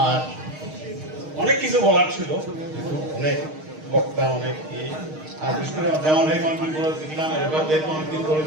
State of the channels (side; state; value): left; late; 6.5 ms